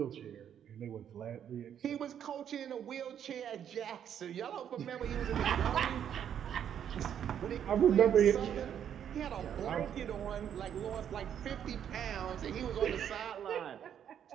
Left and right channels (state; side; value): quieter; left; 9.2 dB